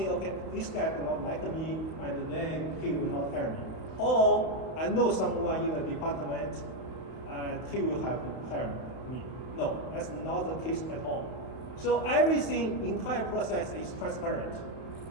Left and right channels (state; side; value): late; right; 32 ms